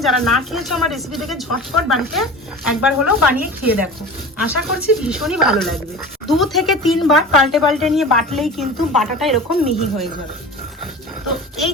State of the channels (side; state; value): both; normal; correlation 0.35